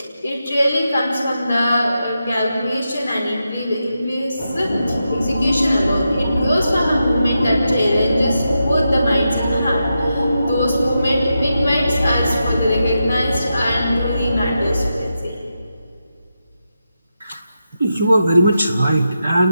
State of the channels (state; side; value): inverted; both; correlation -0.87